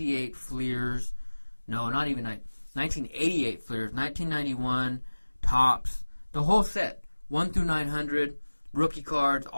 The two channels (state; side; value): inverted; both; correlation -1.00